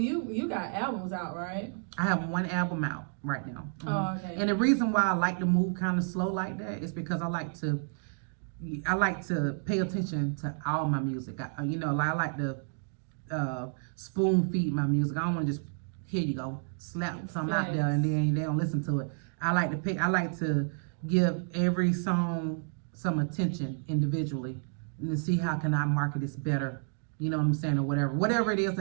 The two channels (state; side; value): silent; left; 57 dB below the other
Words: got albums out, right? I have one album out right now. Mm-hmm. Oh, okay. And the reason why I like to move kind of slow like that is because I like to pay attention to all my music. I like to spoon feed my music. I don't want to just here you go slap something out there and then they don't listen to it. I like to give every song some attention individually and to see how can I market this better. You know what I'm saying, or whatever it is